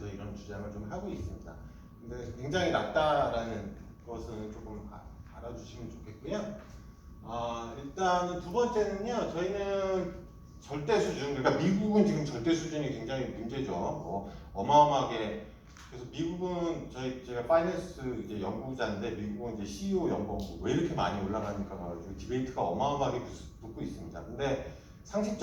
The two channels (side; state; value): both; identical; correlation 1.00